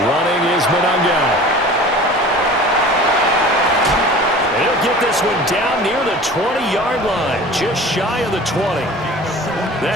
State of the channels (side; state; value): both; normal; correlation 0.41